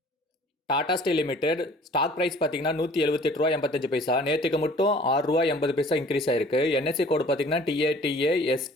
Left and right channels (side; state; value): both; normal; correlation 0.51